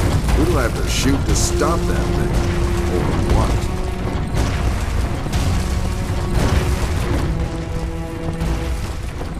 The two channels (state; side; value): identical; both; correlation 1.00